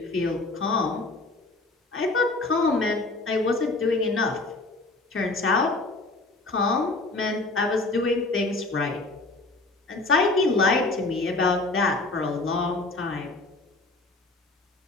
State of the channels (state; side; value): quieter; right; 3.2 dB